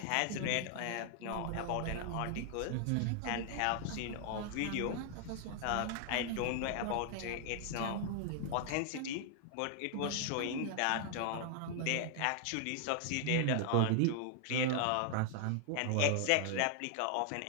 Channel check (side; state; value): both; different; correlation 0.00